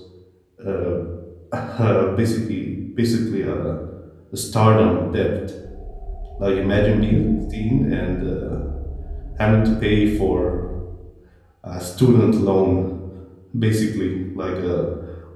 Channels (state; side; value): identical; both; correlation 1.00